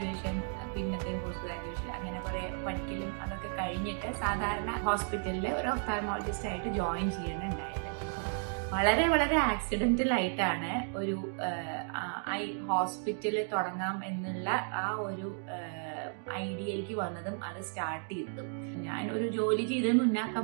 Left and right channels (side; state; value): left; silent; 55 dB below the other